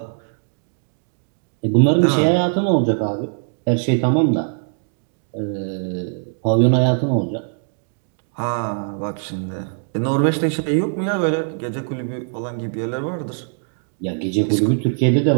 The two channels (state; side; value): silent; left; 63 dB below the other